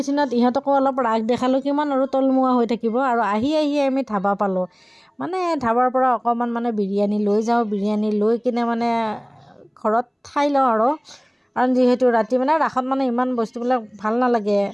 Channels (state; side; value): identical; both; correlation 1.00